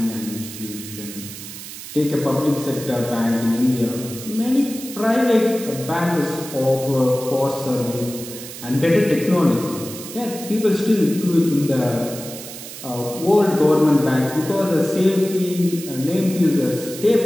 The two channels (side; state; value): right; noise; hiss, 12 dB below the sound